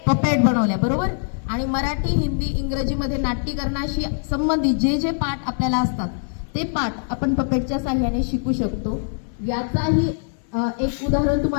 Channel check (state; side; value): silent; right; digital silence